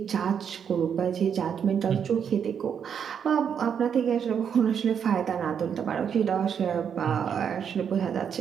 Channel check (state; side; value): quieter; left; 7.7 dB